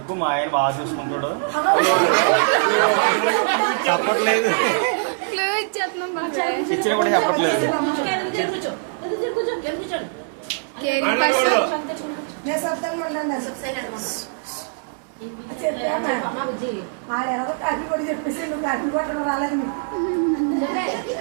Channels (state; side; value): silent; left; 61 dB below the other